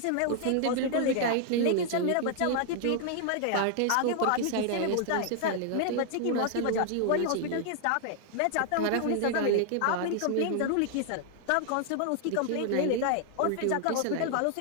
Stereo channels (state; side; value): different; both; correlation 0.00